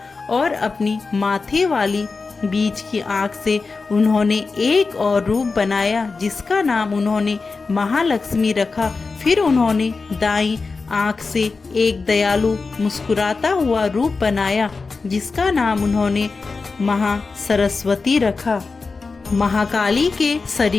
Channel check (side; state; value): right; quieter; 4.2 dB